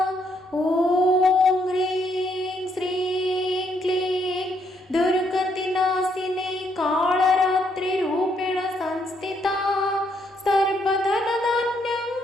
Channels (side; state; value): both; normal; correlation 0.73